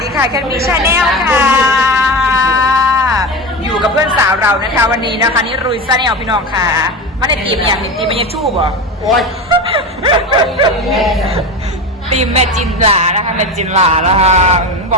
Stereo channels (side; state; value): both; normal; correlation 0.24